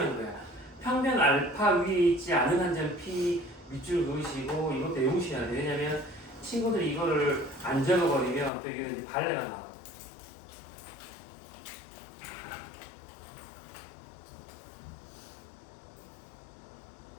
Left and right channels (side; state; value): right; drops out; at 8.5 s